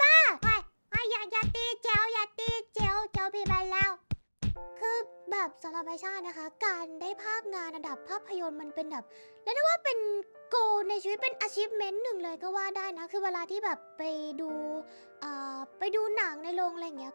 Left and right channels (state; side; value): inverted; both; correlation -1.00